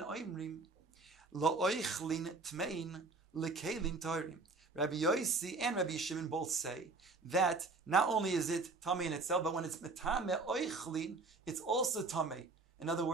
oimrim, lo'oichlin tmein lekelim toirim. Rabbi Yossi and Rabbi Shimon both say that not only is it tamei in itself, but when it's metame oichlin, it's also tamei. In other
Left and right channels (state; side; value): quieter; left; 3.8 dB